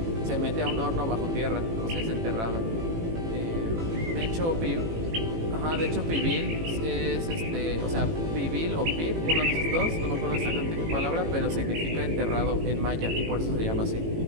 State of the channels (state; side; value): late; left; 18 ms